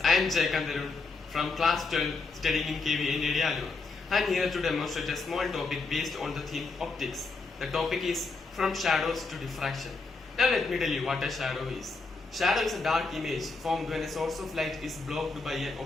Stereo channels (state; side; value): quieter; right; 3.9 dB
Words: I am Jayakanth Arun from class 12 studying in KV in Area. I am here to demonstrate a small topic based on the theme optics. The topic is from shadows to diffraction. Now let me tell you what a shadow is. Shadow is a dark image formed when a source of light is blocked by an